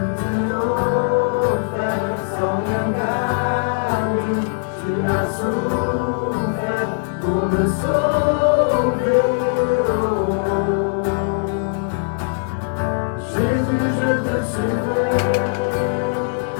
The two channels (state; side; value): silent; right; digital silence